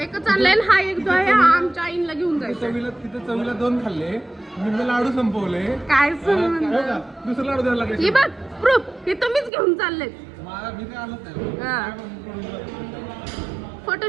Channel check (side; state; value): left; drops out; at 9.5 s